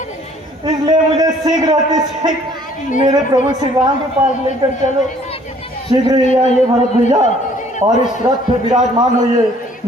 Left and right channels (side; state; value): both; normal; correlation 0.58